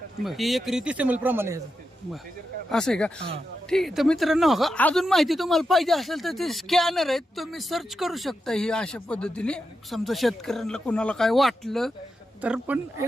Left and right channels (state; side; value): normal; both; correlation 0.88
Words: बरं. ही एकरी 30 ml प्रमाण आहे ह्याचं. बरं. असं आहे का? ठीक आहे. तर मित्रांनो हो का, अजून माहिती तुम्हाला पाहिजे असेल तर ते स्कॅनर आहेत, तुम्ही सर्च करू शकता ही अशा पद्धतीने. समजा शेतकऱ्यांना कोणाला काय वाटलं तर पण